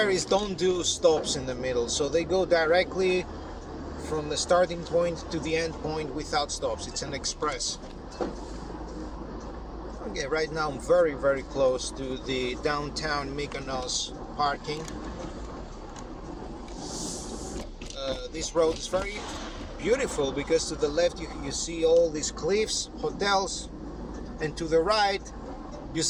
don't do stops in the middle, so they go directly from the starting point to the end point without stops. It's an express. Okay, right now I'm very, very close to the downtown Mykonos parking. This road is very beautiful because to the left you see all these cliffs, hotels, and to the right you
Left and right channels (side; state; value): both; identical; correlation 1.00